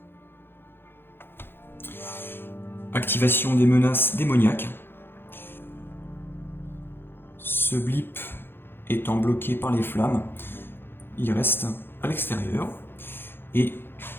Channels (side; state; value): right; late; 0.10 ms